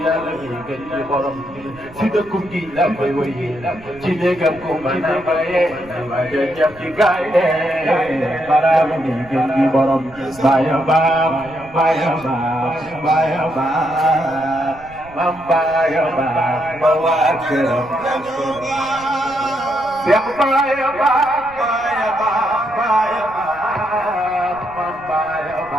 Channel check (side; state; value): right; noise; rumble, 21 dB below the sound